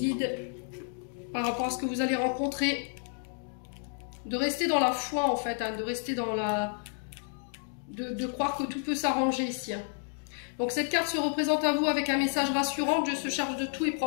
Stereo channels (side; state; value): right; silent; 57 dB below the other